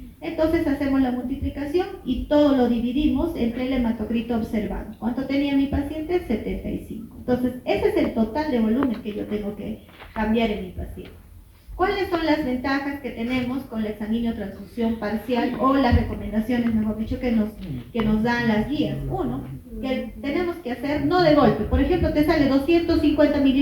Entonces hacemos la multiplicación y todo lo dividimos entre el hematocrito observado. ¿Cuánto tenía mi paciente? 75. Entonces, ese es el total de volumen que yo tengo que cambiar en mi paciente. ¿Cuáles son las ventajas que tenemos con la exsanguíneo transfusión parcial o las recomendaciones, mejor dicho, que nos dan las guías? Uno, que tenemos que hacer no de golpe. Por ejemplo, te sale 250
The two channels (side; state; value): both; identical; correlation 1.00